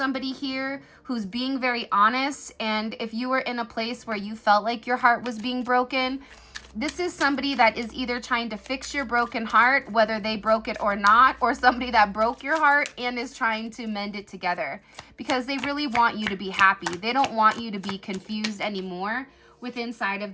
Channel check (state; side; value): identical; both; correlation 1.00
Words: here who's being very honest. And if you were in a place where you felt like your heart was being broken, this is somebody that is either trying to fix your broken heart, whether they broke it or not, or somebody that broke your heart and is trying to mend it together because they really want you to be happy. They don't want you to be confused anymore with inside of